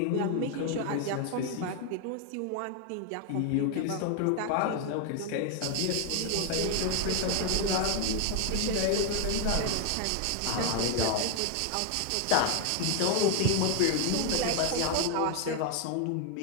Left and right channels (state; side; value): different; both; correlation 0.01